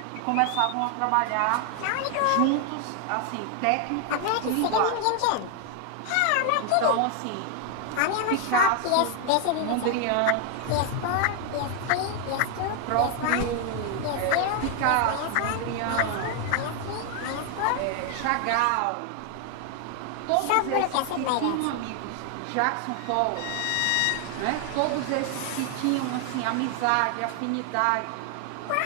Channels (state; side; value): different; both; correlation 0.00